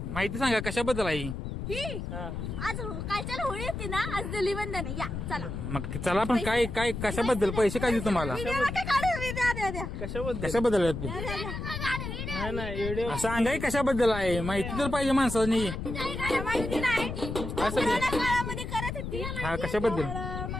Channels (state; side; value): noise; left; rumble, 5 dB below the sound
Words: माहिती सांगा कशाबद्दल आहे? हा. आज कालच्या होळी होती ना, आज धुलीवंदन आहे. या चला. मग चला, पण काय काय कशाबद्दल? पैसे काय देऊ तुम्हाला? कशाबद्दल? कशाबद्दल आहे ते? नाही नाही व्हिडिओ असं सांगाय कशाबद्दल आहे? माहिती तर पाहिजे माणसानी. असं काय? काळामध्ये करत होती. हा कशाबद्दल? मग